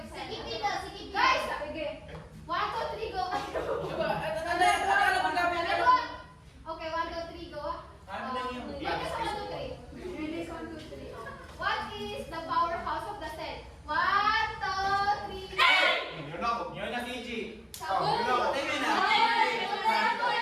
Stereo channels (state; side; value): identical; both; correlation 1.00